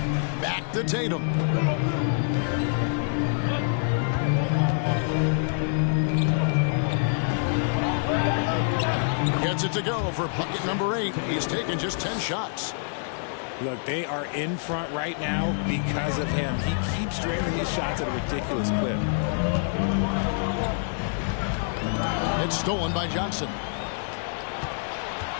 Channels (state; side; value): silent; right; digital silence